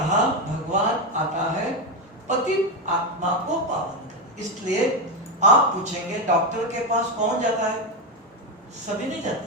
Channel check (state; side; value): normal; both; correlation 0.10